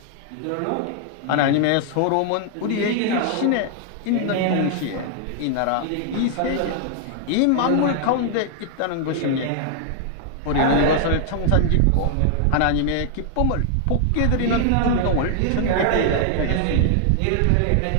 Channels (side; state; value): both; different; correlation 0.00